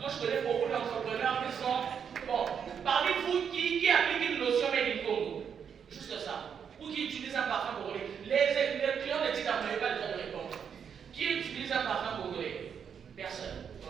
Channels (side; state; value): left; quieter; 7.4 dB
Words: Moi, je connais beaucoup d'entrepreneurs qui sont... Bon, parmi vous, qui applique une notion made in Congo? Juste ça. Ou qui utilise un parfum congolais. Les clients de titre, vous n'avez pas le droit de répondre. Qui utilise un parfum congolais? Personne